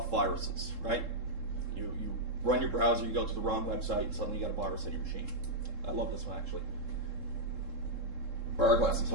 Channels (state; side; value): late; left; 3.7 ms